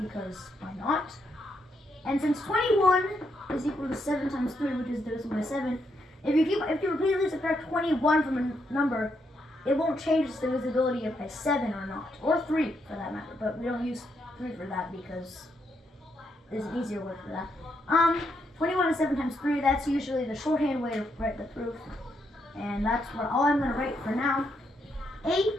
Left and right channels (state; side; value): normal; both; correlation 0.78